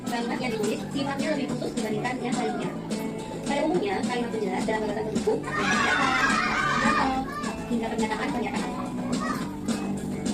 kalimat yang ditulis sifatnya lebih khusus dibandingkan yang lainnya. Pada umumnya, kalimat penjelas dalam gagasan pendukung atau hingga pernyataan-pernyataan.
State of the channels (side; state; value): both; identical; correlation 1.00